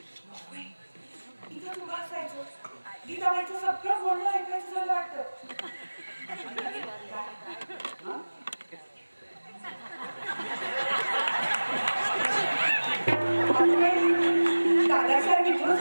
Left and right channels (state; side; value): inverted; both; correlation -1.00